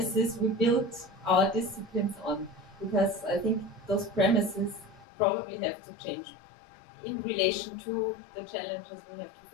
we built our disciplines on, because I think those premises probably have to change in relation to the challenges we have to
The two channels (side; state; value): right; drops out; at 5.1 s